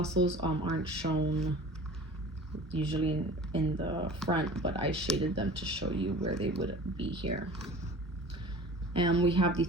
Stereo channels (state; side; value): normal; both; correlation 0.41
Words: aren't shown usually in the front, but I shaded them to show you where they would be here. And we have the